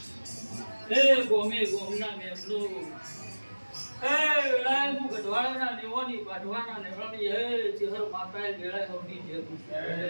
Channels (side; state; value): both; inverted; correlation -1.00